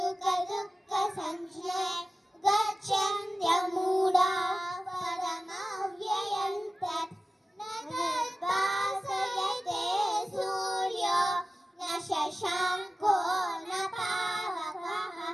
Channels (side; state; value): both; normal; correlation 0.95